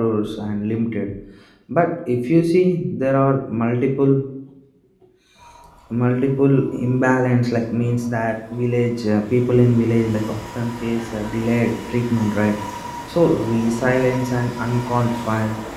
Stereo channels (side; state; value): both; identical; correlation 1.00